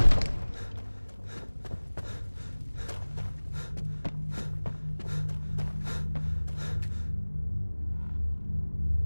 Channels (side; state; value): both; inverted; correlation -1.00